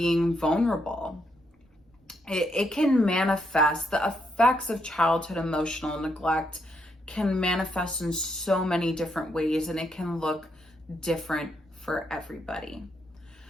vulnerable. It can manifest, the effects of childhood emotional neglect can manifest in so many different ways, and it can look different for everybody.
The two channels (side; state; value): both; normal; correlation 0.77